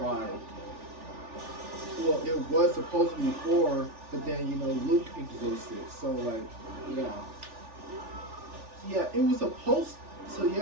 Well, it was supposed to be 4, but then, you know, Luke existed. So, like, yeah. Yeah, it was supposed. So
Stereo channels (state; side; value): late; left; 3.4 ms